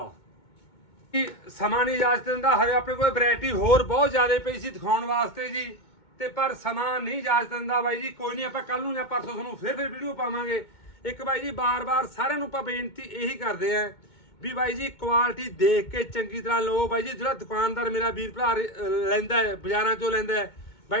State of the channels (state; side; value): late; right; 2.2 ms